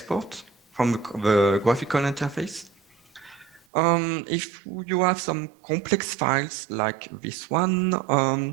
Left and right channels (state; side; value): drops out; left; at 3.7 s